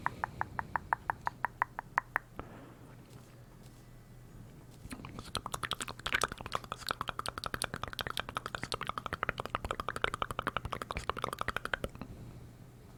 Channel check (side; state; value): both; identical; correlation 1.00